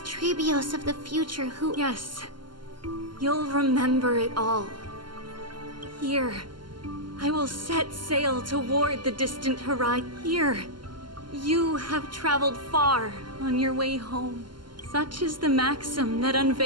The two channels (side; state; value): left; late; 0.71 ms